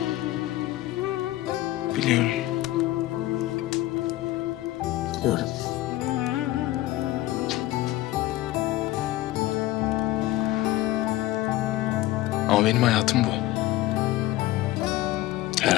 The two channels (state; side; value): quieter; right; 16.3 dB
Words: Biliyorum. Biliyorum. Ama benim hayatım bu. Her